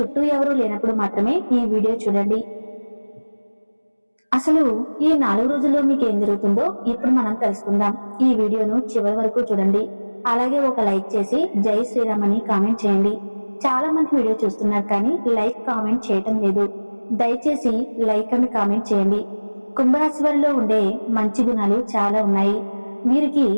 ఎవరూ లేనప్పుడు మాత్రమే ఈ వీడియో చూడండి. అసలు ఈ 4 రోజుల్లో మీకు ఏం జరుగుతుందో ఇప్పుడు మనం తెలుసుకుందాం. ఈ వీడియోను చివరి వరకు చూడండి. అలాగే ఒక లైక్ చేసి జై శ్రీరామ్ అని కామెంట్ చేయండి. చాలా మంది వీడియో చూస్తున్నారు కానీ లైక్ కామెంట్ చేయటం లేదు. దయచేసి లైక్ అని కామెంట్ చేయండి. కుంభరాశి వారిలో ఉండే మంచి గుణాలు చాలా ఉన్నాయి. వీరికి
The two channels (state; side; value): inverted; both; correlation -1.00